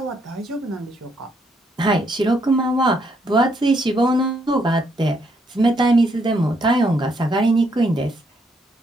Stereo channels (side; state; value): both; normal; correlation 0.74